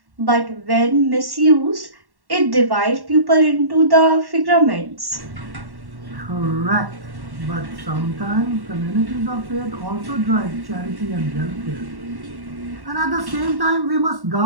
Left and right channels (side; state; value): left; late; 1.1 ms